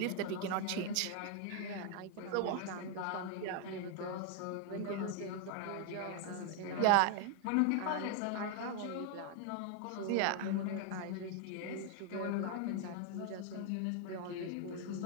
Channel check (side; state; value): both; different; correlation 0.00